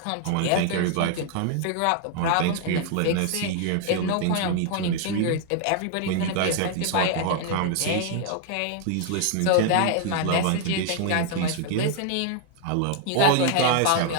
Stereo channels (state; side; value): different; both; correlation 0.00